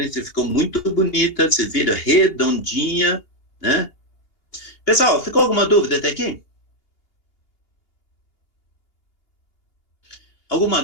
ficou muito bonita, você vira redondinha, né? Pessoal, ficou alguma dúvida até aqui? Alguma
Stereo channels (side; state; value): right; late; 2.8 ms